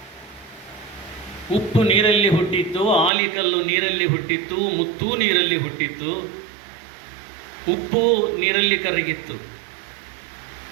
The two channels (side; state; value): left; drops out; at 3.1 s